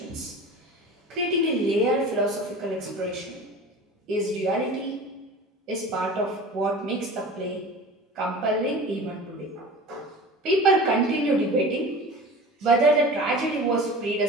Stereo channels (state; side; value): normal; both; correlation 0.37